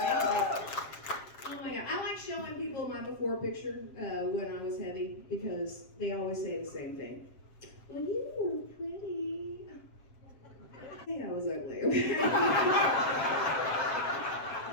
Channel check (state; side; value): late; right; 7.6 ms